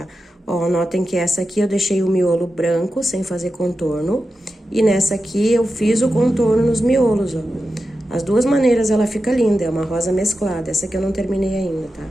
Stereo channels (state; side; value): normal; both; correlation 0.91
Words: Ó, notem que essa aqui eu deixei o miolo branco, sem fazer contorno, e nessa aqui eu fiz o contorno nos miolos, ó. As 2 maneiras ela fica linda, é uma rosa mesclada, essa aqui eu não terminei ainda, tá?